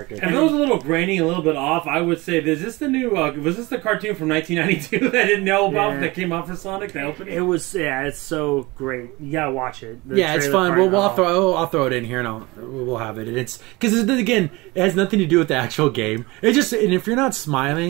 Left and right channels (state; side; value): quieter; left; 22.7 dB